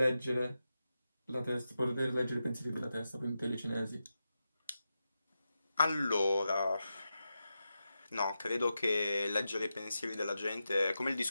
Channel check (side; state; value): both; inverted; correlation -0.90